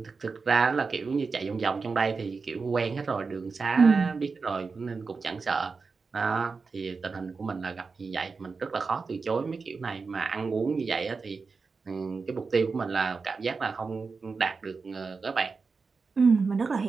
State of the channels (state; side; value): quieter; left; 4.6 dB